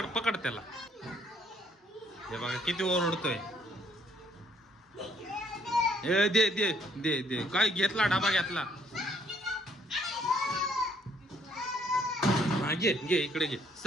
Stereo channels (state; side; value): normal; both; correlation 0.66